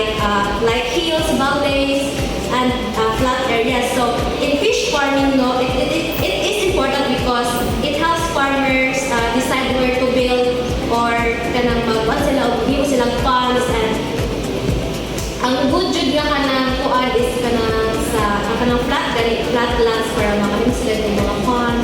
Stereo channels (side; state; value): both; identical; correlation 1.00